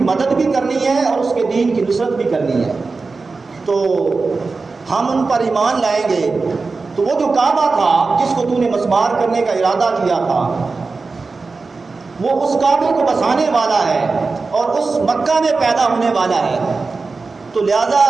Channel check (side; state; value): left; quieter; 4.1 dB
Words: مدد بھی کرنی ہے اور اس کے دین کی نصرت بھی کرنی ہے، تو ہم ان پر ایمان لائیں گے۔ تو وہ جو کعبہ تھا جس کو تو نے مسمار کرنے کا ارادہ کیا تھا، وہ اس کعبے کو بسانے والا ہے اور اس مکہ میں پیدا ہونے والا ہے، تو لہذا